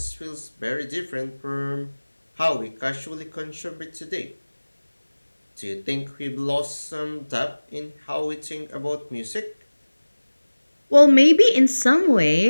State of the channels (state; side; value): inverted; both; correlation -1.00